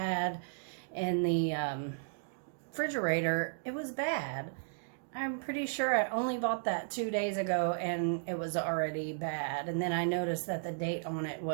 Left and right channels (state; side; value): silent; left; digital silence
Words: in the refrigerator, it was bad. I'm pretty sure I only bought that 2 days ago and it was already bad. And then I noticed that the date on it